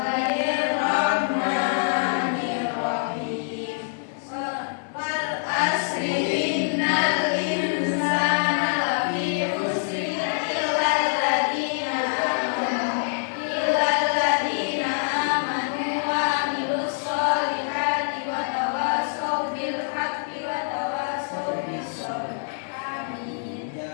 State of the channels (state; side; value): silent; right; digital silence